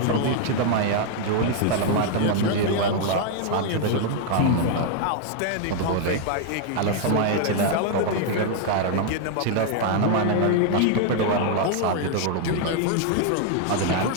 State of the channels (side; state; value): both; different; correlation 0.00